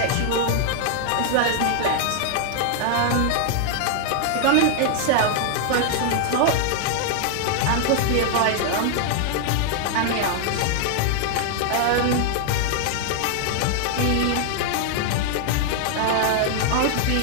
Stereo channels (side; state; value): both; different; correlation 0.00